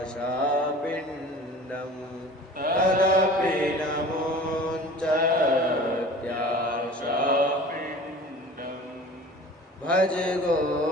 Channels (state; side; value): normal; both; correlation 0.42